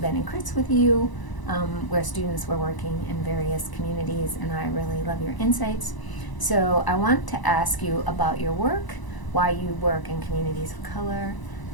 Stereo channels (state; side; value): late; right; 1.0 ms